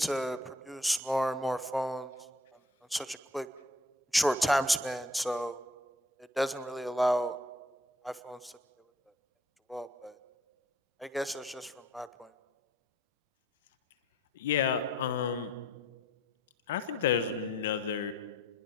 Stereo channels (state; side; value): normal; both; correlation 0.58